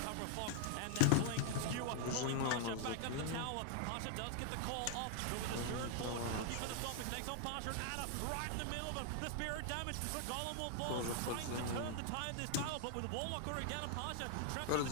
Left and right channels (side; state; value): both; different; correlation 0.00